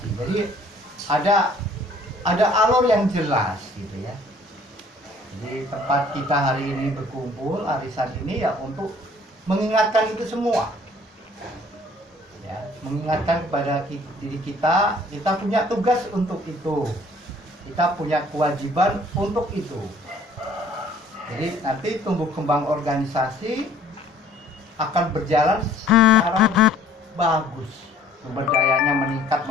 Jadi ada alur yang jelas gitu ya. Jadi tempat kita hari ini berkumpul, arisan ini ya untuk mengingatkan itu semua. Ya, mengingatkan kepada diri kita punya tugas untuk itu, kita punya kewajiban untuk itu. Jadi nanti tumbuh kembang organisasi akan berjalan secara bagus, sumber dayanya meningkat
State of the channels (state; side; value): normal; both; correlation 0.56